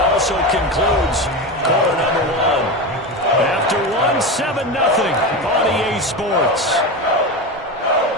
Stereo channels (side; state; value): both; normal; correlation 0.21